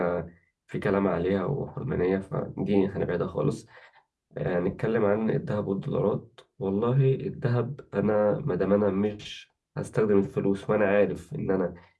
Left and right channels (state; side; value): identical; both; correlation 1.00